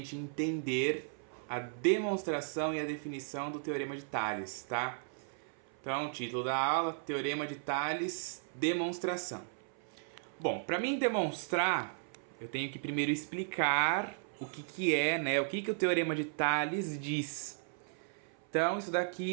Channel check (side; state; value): left; silent; 54 dB below the other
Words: entender a demonstração e a definição do Teorema de Tales, tá? Então, título da aula, Teorema de Tales, demonstração. Bom, para mim demonstrar, eu tenho que primeiro explicar o que é, né? O que o Teorema de Tales diz. Então, isso